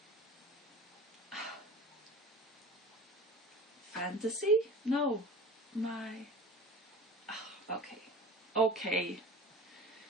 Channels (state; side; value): normal; both; correlation 0.37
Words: fantasy? No, my okay.